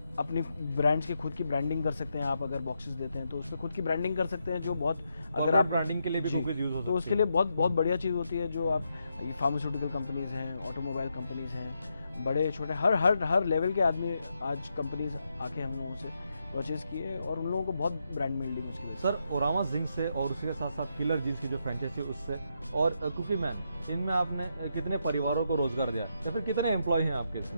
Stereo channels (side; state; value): both; inverted; correlation -0.82